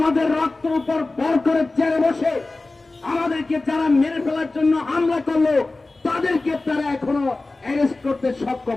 রক্ত উপর ভর করে চেয়ারে বসে আমাদেরকে যারা মেরে ফেলার জন্য হামলা করলো তাদেরকে তারা এখনো অ্যারেস্ট করতে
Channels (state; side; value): quieter; right; 3.2 dB